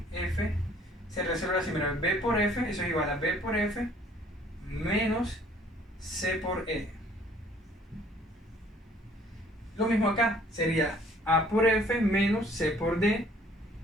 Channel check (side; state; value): both; normal; correlation 0.57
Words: F, se resuelve así, mira, B por F, eso es igual a B por F menos C por E. Lo mismo acá, sería A por F menos C por D,